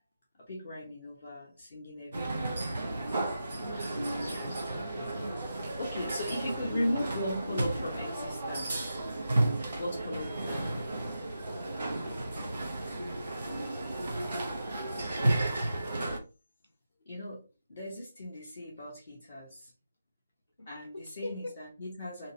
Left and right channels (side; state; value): both; inverted; correlation -0.88